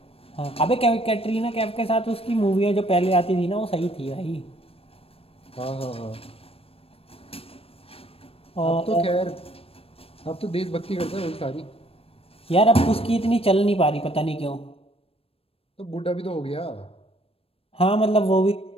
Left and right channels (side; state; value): right; late; 0.28 ms